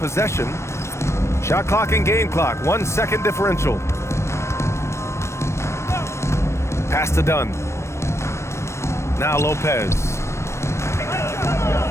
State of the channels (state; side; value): late; right; 0.13 ms